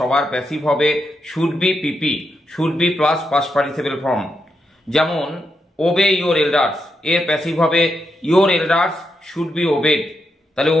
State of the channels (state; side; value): normal; both; correlation 0.83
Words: প্যাসিভ হবে should be PP, should be plus past participle form. যেমন ওবে ইয়োর এল্ডার্স, এর প্যাসিভ হবে your elders should be obeyed. তাহলে